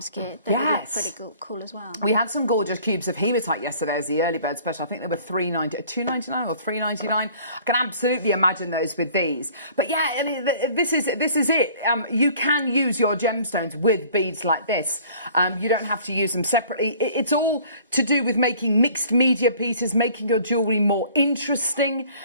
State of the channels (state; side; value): inverted; both; correlation -0.52